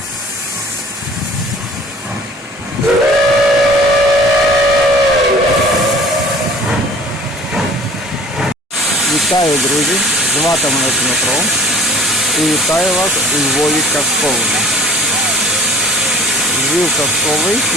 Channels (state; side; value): normal; both; correlation 0.47